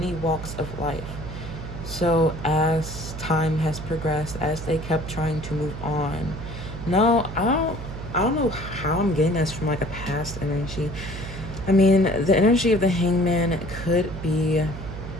walks of life. So as time has progressed, as they kept trying to move on, no, I don't know how I'm getting this from like a past energy. I mean, the energy of the hangman could be,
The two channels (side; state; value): right; noise; hum, 9 dB below the sound